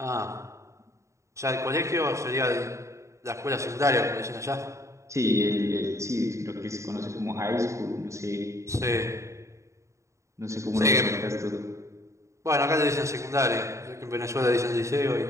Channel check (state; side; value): late; left; 0.14 ms